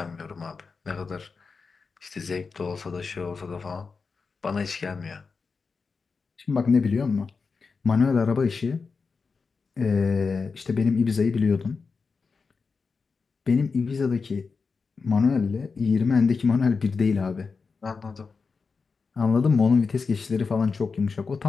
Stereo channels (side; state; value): right; quieter; 4.8 dB